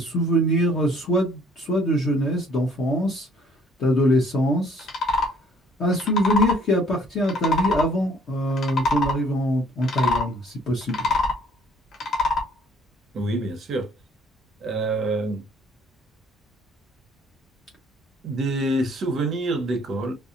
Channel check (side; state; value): both; normal; correlation 0.59